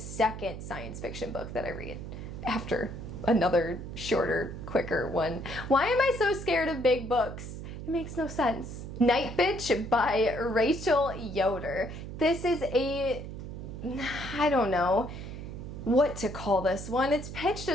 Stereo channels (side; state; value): right; noise; hum, 9 dB below the sound